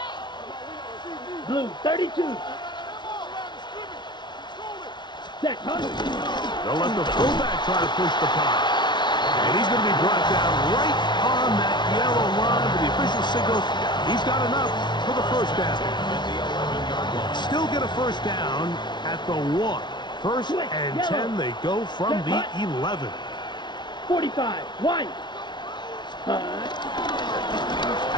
Blue, 32. Set, hut. They'll let the fullback try to push the pile. And he's going to be brought down right on that yellow line. But the official signal, he's got enough for the first down. Still get a first down at the 1. First and 10, they go from the 11. 45, white. I'll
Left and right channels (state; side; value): late; right; 0.21 ms